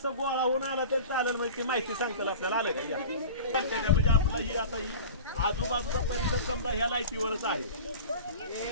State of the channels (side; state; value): both; inverted; correlation -0.36